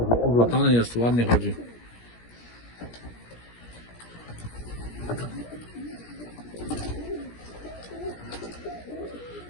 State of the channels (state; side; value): late; right; 17 ms